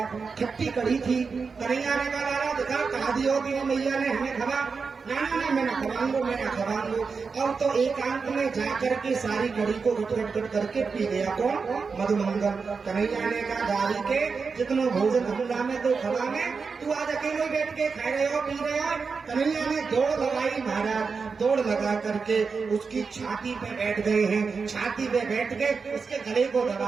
खट्टी कढ़ी थी। कन्हैया ने कहा लाला दिखा कहा दियो कि मैया ने हमें खबा, ना मैं ना खवाऊंगा, मैं ना खवाऊंगा। अब तो एकांत में जाकर के सारी कढ़ी को घट करके पी गया कौन, मधुमंगल। कन्हैया ने कहा गाड़ी के जितनो भोजन हमला में तो खबा में, तू आज अकेले बैठ के खा रहे हो पी रहे हो। कन्हैया ने दौड़ लगाई महाराज, दौड़ लगा करके उसकी छाती पे बैठ गए हैं। छाती पे बैठ के उसके गले को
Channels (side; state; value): left; quieter; 5.0 dB